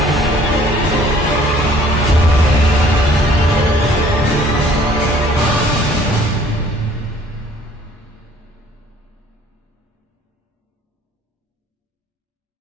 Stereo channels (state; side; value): normal; both; correlation 0.56